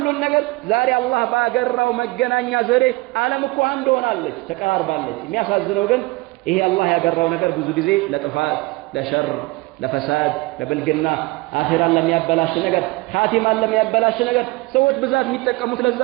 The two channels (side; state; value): left; quieter; 22.7 dB